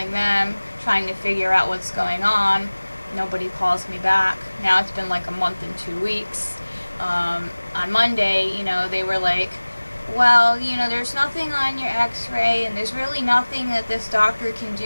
them, trying to figure out what's going on. Nobody calls me back. Now it's been like a month and 2 weeks. On Monday, they were like, well, there's nothing on your x-ray, and there's really nothing that this doctor can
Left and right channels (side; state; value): both; inverted; correlation -1.00